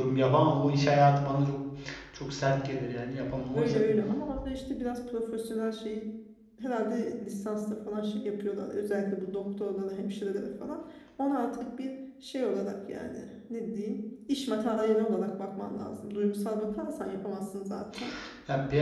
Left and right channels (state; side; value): identical; both; correlation 1.00